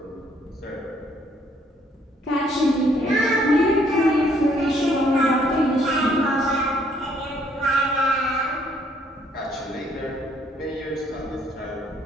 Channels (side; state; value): both; normal; correlation 0.66